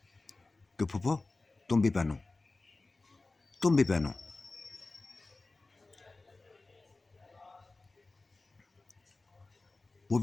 कि फूफो तुम भी पहनो, तुम भी पहनो। वो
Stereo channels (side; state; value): right; quieter; 3.3 dB